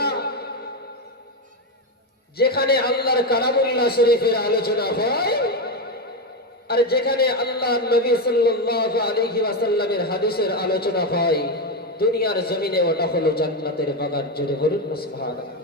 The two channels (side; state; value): both; normal; correlation 0.11